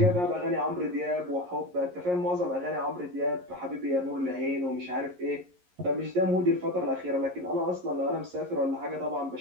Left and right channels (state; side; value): late; left; 11 ms